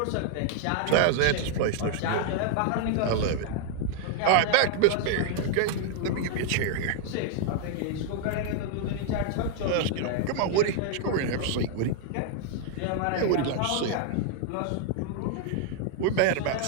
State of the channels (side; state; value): both; different; correlation -0.01